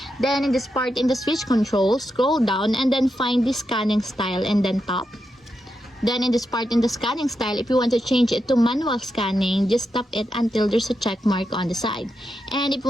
Then in this part in the switch control, scroll down and then find the scanning style and then tap. Then in this part in the scanning style, if you want to change it to manual scanning, just tap it until there's a check mark on the side. And if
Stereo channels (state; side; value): normal; both; correlation 0.86